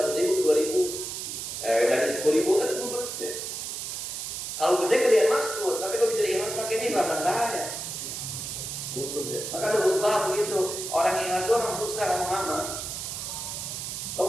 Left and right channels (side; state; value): right; noise; hiss, 5 dB below the sound